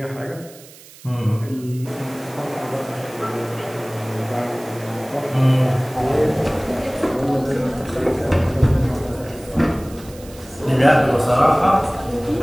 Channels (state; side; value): noise; right; hiss, 21 dB below the sound